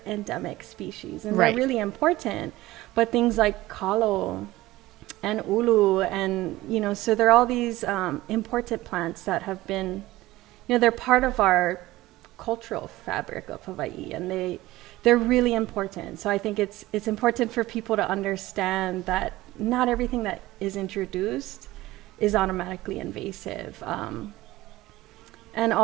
endemic species. And Right. they're really important. But things like kalo and ulu, and, you know, so there are all these important plants that have been, you know, they're part of our cultural fabric of Hawaii, and they're really important. So I think it's important for people to understand that not everything that is introduced is automatically invasive. And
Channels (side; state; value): left; quieter; 17.6 dB